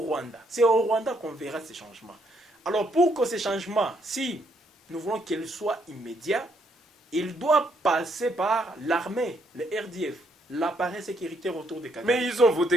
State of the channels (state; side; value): normal; both; correlation 0.72